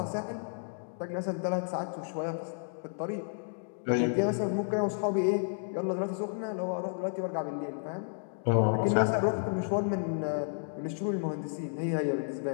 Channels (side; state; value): right; silent; digital silence